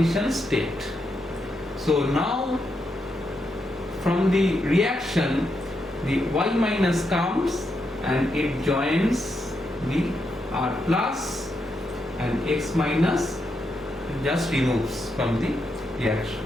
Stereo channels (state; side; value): normal; both; correlation 0.82